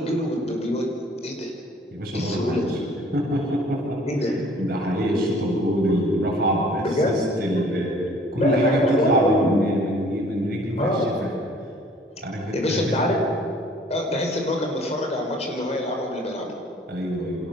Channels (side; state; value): both; normal; correlation 0.54